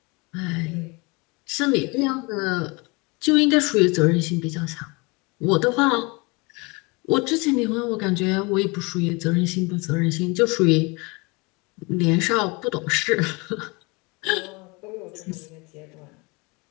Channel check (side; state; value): right; quieter; 27.5 dB